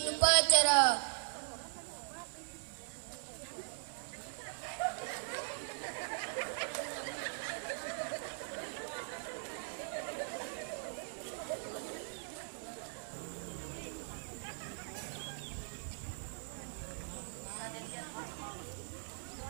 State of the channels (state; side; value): silent; left; digital silence